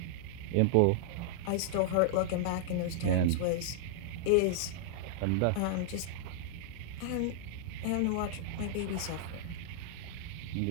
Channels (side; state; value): both; different; correlation -0.01